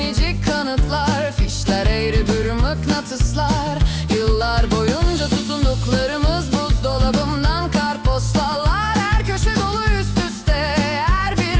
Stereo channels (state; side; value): identical; both; correlation 1.00